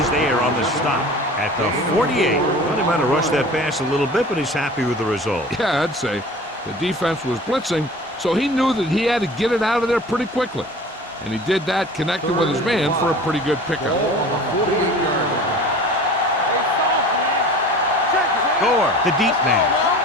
is there on the stop at the 48. Well, he might have rushed that pass a little bit, but he's happy with the result. Yeah, I'd say the defense was blitzing, so he knew that he had to get it out of there pretty quickly. And he did that, connected with his man for a pretty good pickup. Gore, the deep man,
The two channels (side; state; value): both; normal; correlation 0.41